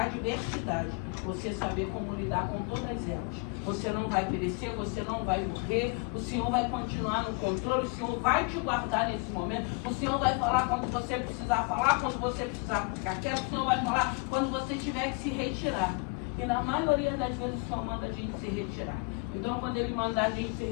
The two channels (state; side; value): quieter; right; 31.4 dB